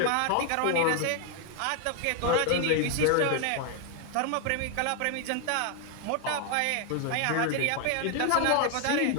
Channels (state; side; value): different; both; correlation 0.01